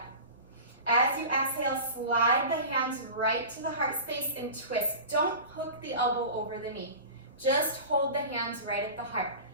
As you exhale, slide the hands right to the heart space and twist. Don't hook the elbow over the knee. Just hold the hands right at the heart.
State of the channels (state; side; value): inverted; both; correlation -0.34